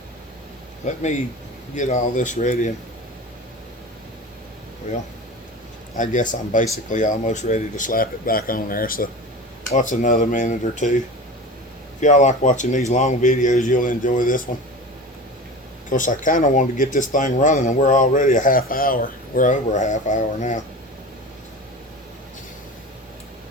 Let me get all this ready. Well, I guess I'm basically almost ready to slap it back on there, so what's another minute or two? If y'all like watching these long videos, you'll enjoy this one. Of course, I kind of wanted to get this thing running, and we're already a half hour. We're over a half hour now.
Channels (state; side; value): normal; both; correlation 0.32